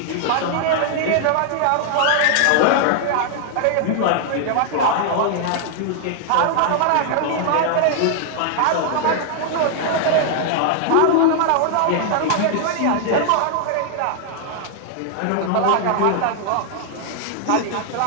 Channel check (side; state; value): both; different; correlation -0.01